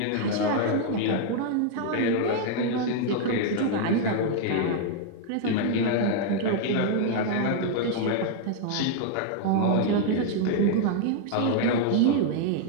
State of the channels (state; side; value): different; both; correlation 0.00